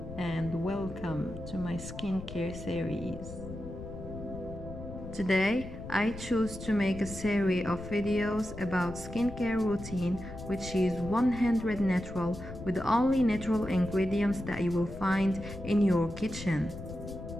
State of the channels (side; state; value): left; noise; rumble, 11 dB below the sound